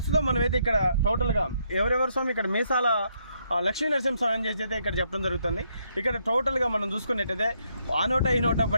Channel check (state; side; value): inverted; both; correlation -0.74